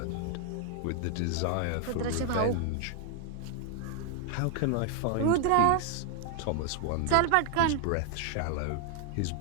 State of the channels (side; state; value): both; different; correlation 0.00